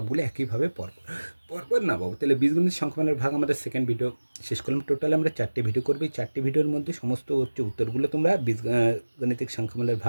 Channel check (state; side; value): inverted; both; correlation -1.00